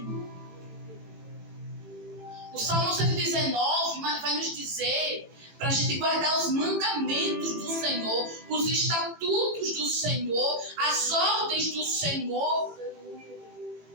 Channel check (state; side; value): late; left; 18 ms